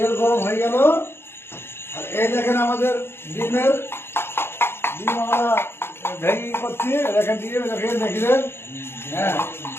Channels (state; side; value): late; right; 0.11 ms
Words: গরম হয়ে গেল। আর এই দেখেন আমাদের ডিম আমরা ভেঙে করছি। দেখেন দেখলেন, হ্যাঁ